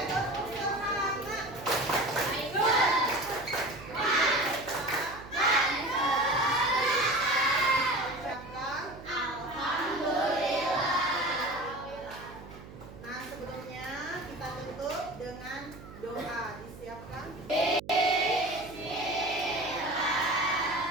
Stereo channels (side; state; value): right; noise; hum, 16 dB below the sound